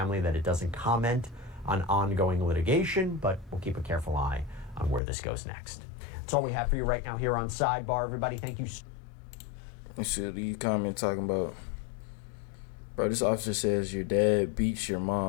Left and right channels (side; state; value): right; drops out; at 5.0 s